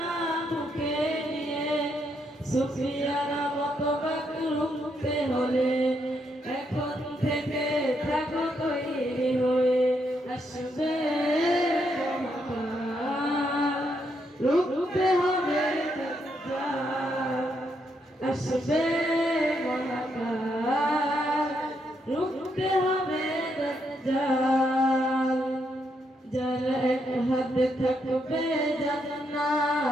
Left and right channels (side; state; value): both; normal; correlation 0.78